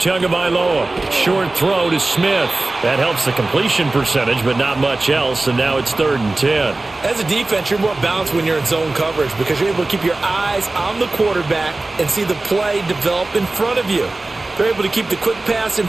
Short throw to Smith. That helps the completion percentage, but not much else, and now it's 3rd and 10. As a defense, you're more balanced when you're in zone coverage because you're able to keep your eyes on the quarterback and see the play develop in front of you. They're able to keep the quick pass in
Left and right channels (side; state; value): left; quieter; 3.0 dB